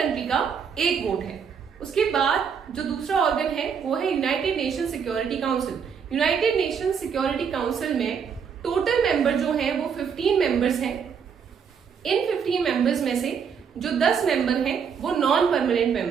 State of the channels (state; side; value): quieter; left; 6.9 dB